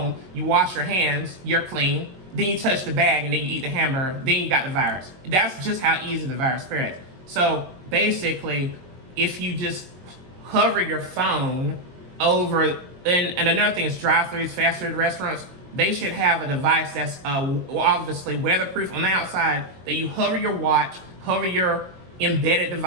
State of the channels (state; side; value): late; left; 21 ms